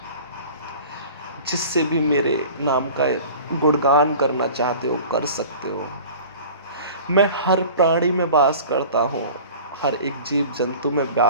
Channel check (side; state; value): both; inverted; correlation -0.42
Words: जिससे भी मेरे नाम का गुणगान करना चाहते हो कर सकते हो। मैं हर प्राणी में वास करता हूँ, हर एक जीव जंतु में